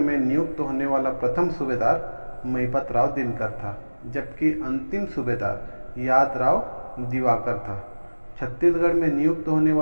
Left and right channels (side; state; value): both; inverted; correlation -1.00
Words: नियुक्त होने वाला प्रथम सूबेदार महिपत राव दिनकर था, जबकि अंतिम सूबेदार यादराव दिवाकर था। छत्तीसगढ़ में नियुक्त होने